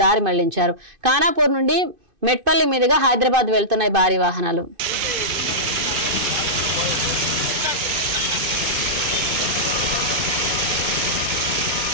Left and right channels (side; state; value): left; late; 2.5 ms